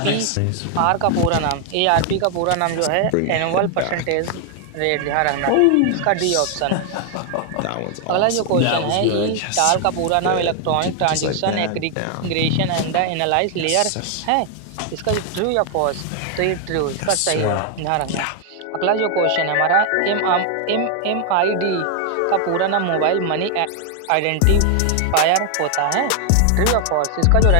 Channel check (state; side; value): different; both; correlation 0.00